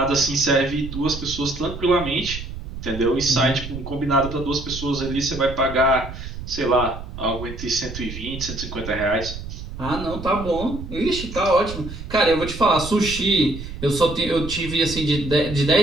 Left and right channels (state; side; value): noise; right; rumble, 10 dB below the sound